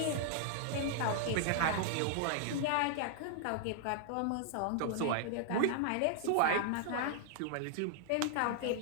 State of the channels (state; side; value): different; both; correlation -0.01